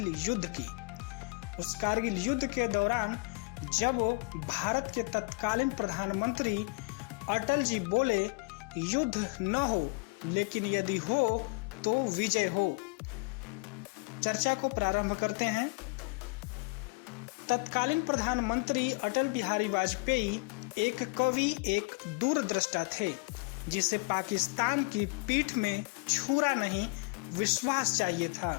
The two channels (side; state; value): right; quieter; 28.8 dB